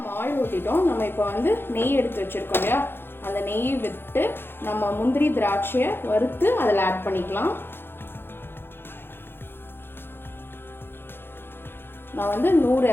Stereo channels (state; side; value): late; right; 0.10 ms